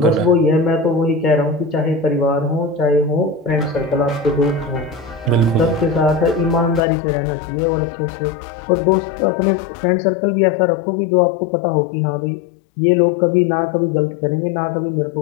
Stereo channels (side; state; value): right; drops out; at 6.8 s